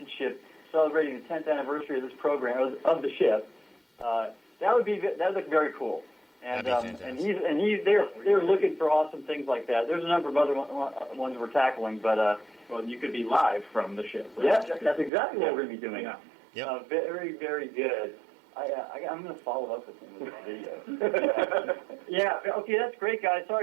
ship celebrating the 10th anniversary of this program, of the ship, that would look very cool. And they're looking for awesome things like that. There's a number of other ones we're tackling, but well, you could be live from the ship. Right? Yeah, that's exactly what we're going to be doing. Yeah. Yep. Very, very good. I'm going to follow up with him with a video. Yeah. Okay, that's great, guys.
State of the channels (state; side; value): drops out; left; at 15.1 s